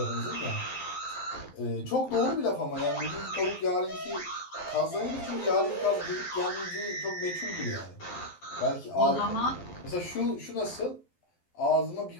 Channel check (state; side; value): late; right; 12 ms